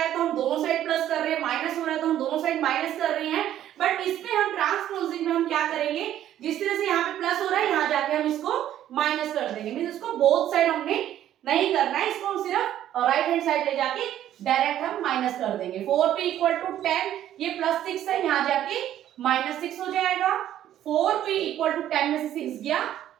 तो हम दोनों साइड प्लस कर रहे हैं, माइनस हो रहा है तो हम दोनों साइड माइनस कर रहे हैं। बट इसमें हम ट्रांसपोजिंग में हम क्या करेंगे, जिस तरह से यहाँ पे प्लस हो रहा है, यहाँ जाके हम इसको माइनस कर देंगे। मींस इसको बोथ साइड हमने नहीं करना है, इसको हम सिर्फ राइट हैंड साइड ले जाके डायरेक्ट हम माइनस कर देंगे। 4p = 10, ये +6 है, यहाँ जाके -6 हो जाएगा। 4p = 10 में से 6 गया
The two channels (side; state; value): left; quieter; 11.8 dB